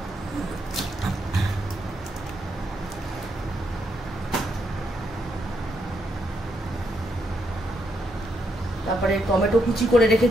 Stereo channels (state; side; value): normal; both; correlation 0.79